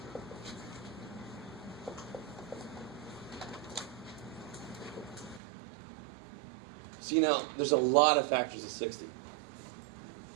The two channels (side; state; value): left; drops out; at 5.4 s